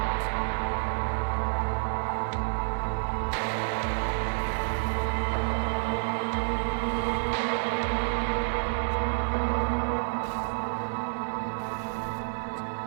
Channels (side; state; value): left; silent; 59 dB below the other